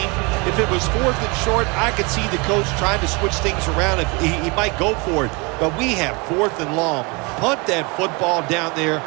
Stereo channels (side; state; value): left; quieter; 28.6 dB